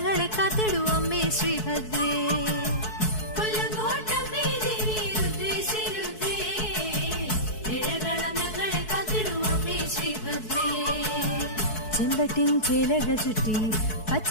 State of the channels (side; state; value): right; late; 4.6 ms